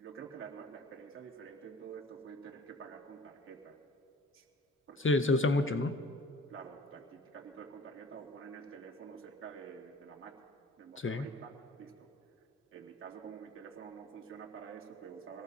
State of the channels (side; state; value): both; normal; correlation 0.48